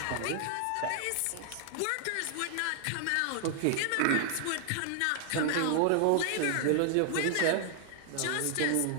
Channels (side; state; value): both; different; correlation 0.00